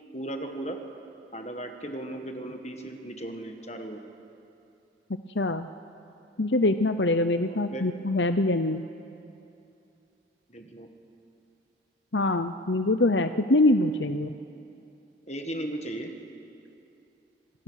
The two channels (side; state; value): both; normal; correlation 0.35